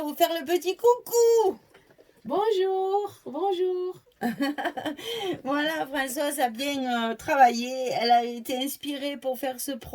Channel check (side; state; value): both; identical; correlation 1.00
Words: vous faire le petit coucou. Bonjour, bonjour. Voilà, Françoise a bien travaillé, elle a été inspirée pour faire ce